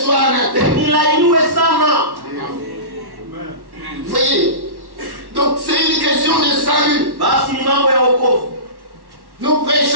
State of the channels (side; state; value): left; late; 1.1 ms